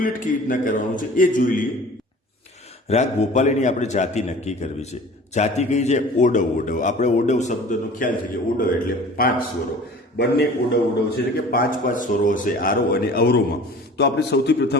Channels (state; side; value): normal; both; correlation 0.44